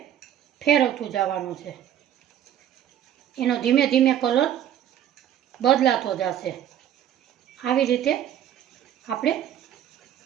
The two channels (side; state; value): left; quieter; 10.6 dB